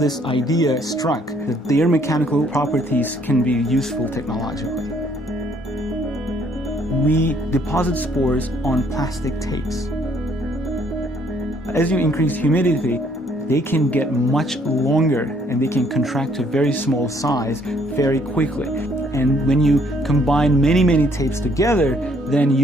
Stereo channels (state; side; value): normal; both; correlation 0.65